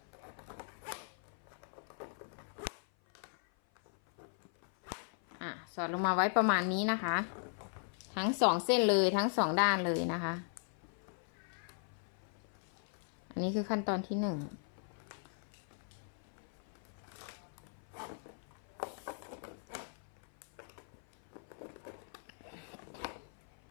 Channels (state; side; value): silent; right; 52 dB below the other